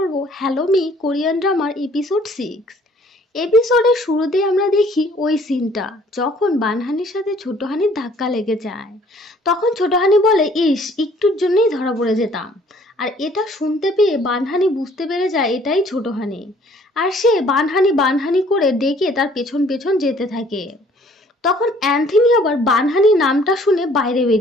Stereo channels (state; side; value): normal; both; correlation 0.58